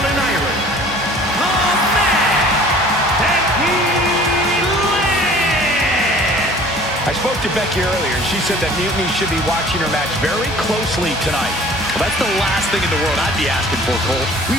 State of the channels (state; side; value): normal; both; correlation 0.49